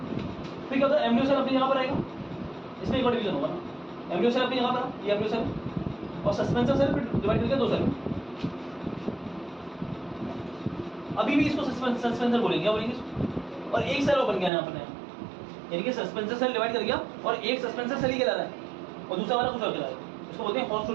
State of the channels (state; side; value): drops out; left; at 14.5 s